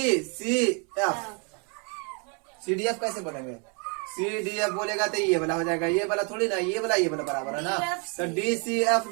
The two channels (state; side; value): quieter; left; 35.9 dB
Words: C F, C D F कैसे बोलेंगे, सी डी एफ बोलेगा तो ये वाला हो जाएगा, ये वाला थोड़ी ना, ये वाला बराबर है ना, तो डी सी एफ